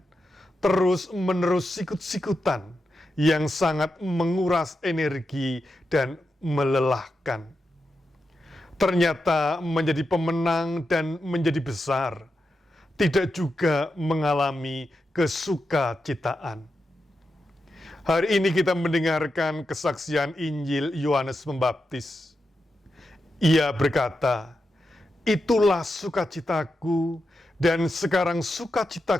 terus-menerus sikut-sikutan, yang sangat menguras energi dan melelahkan. Ternyata menjadi pemenang dan menjadi besar tidak juga mengalami kesukacitaan. Hari ini kita mendengarkan kesaksian Injil Yohanes Pembaptis. Ia berkata, "Itulah sukacitaku, dan sekarang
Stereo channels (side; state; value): both; normal; correlation 0.88